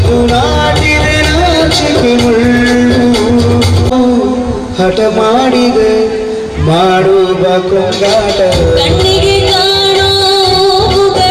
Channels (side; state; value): both; identical; correlation 1.00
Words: ಹಠ ಮಾಡಿದೆ ಮಾಡುವ ಕೊಂಗಾಟ ಕಣ್ಣಿಗೆ ಕಾಣೋ